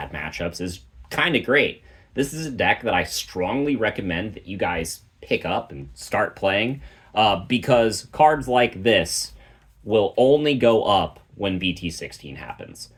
matchups, is kind of great. This is a deck that I strongly recommend that you guys pick up and start playing, because cards like this will only go up when BT16 happens.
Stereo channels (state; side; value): identical; both; correlation 1.00